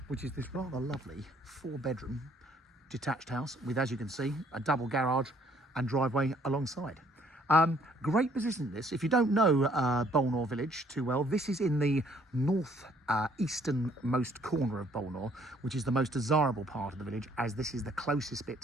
which is this rather lovely 4-bedroom detached house with, as you can see, a double garage and driveway alongside. Great position this. If you don't know Bolnor Village too well, this is in the north easternmost corner of Bolnor, which is the most desirable part of the village, as this is the closest bit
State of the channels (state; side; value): normal; both; correlation 0.63